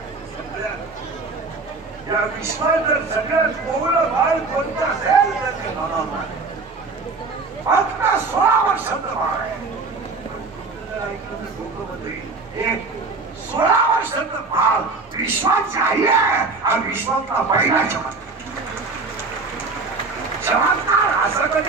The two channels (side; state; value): left; quieter; 4.0 dB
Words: सगळ्यात या विश्वात जर सगळ्यात कोवळं बाळ कोणतं असेल तर ते ज्ञानोबा. फक्त 16 वर्षाचं बाळ आहे. 16 वर्षाचं बाळ विश्वाची आई आहे हा विश्वातला पहिला चमत्कार. चमत्कार असं